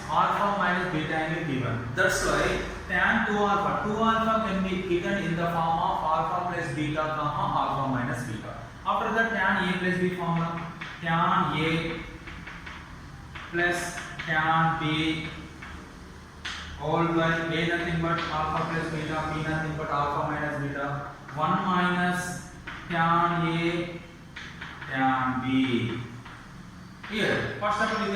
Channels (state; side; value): identical; both; correlation 1.00